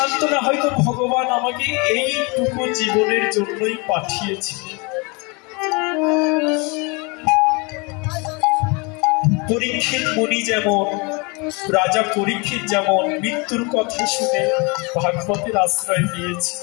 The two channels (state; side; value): quieter; right; 29.4 dB